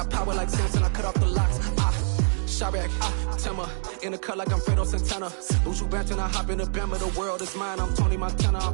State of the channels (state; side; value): silent; left; digital silence